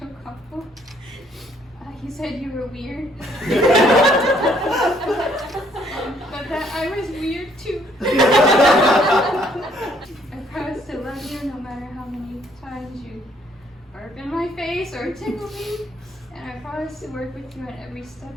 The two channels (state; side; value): normal; both; correlation 0.66